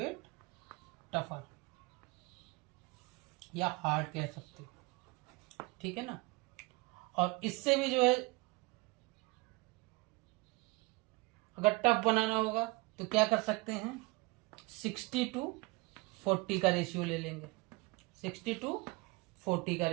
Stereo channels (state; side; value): quieter; left; 24.6 dB